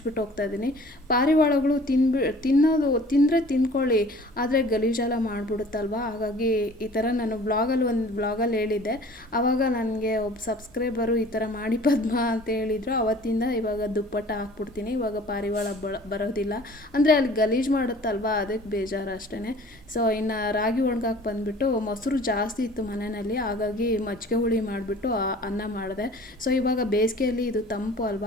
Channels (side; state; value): both; normal; correlation 0.48